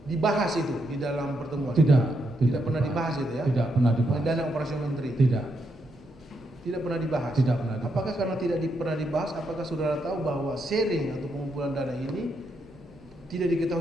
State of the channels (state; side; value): normal; both; correlation 0.80